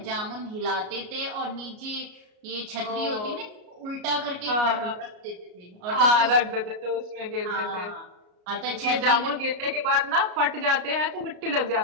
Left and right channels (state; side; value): late; left; 33 ms